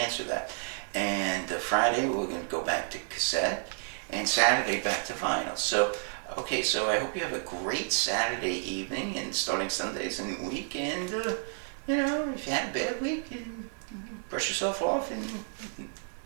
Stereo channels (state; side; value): silent; left; 57 dB below the other